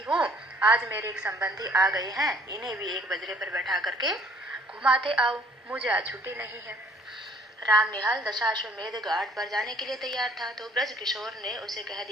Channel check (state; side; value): normal; both; correlation 0.58